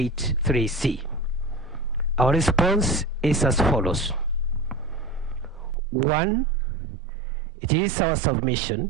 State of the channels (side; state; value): left; drops out; at 5.8 s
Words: Our response is as follows. 1, it is our